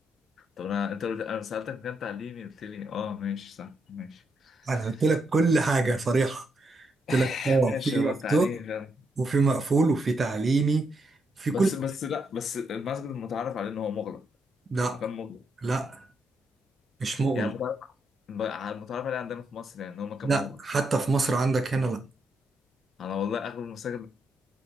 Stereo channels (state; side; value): normal; both; correlation 0.80